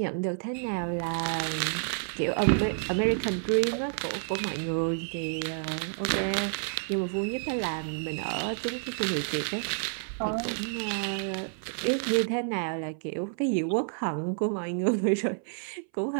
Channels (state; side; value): silent; left; 58 dB below the other